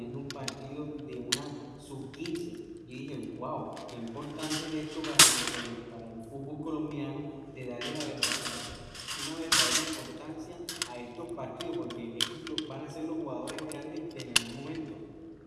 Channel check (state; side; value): identical; both; correlation 1.00